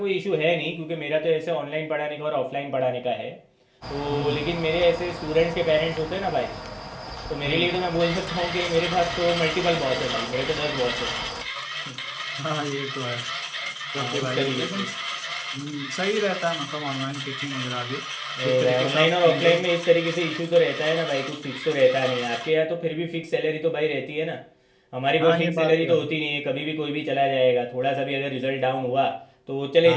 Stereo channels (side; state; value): both; identical; correlation 1.00